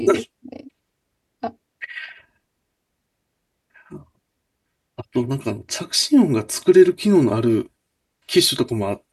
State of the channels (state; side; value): identical; both; correlation 1.00